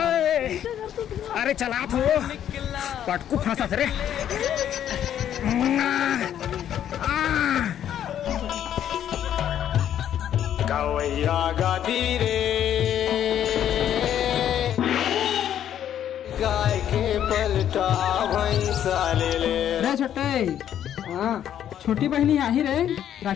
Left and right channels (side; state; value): right; quieter; 10.3 dB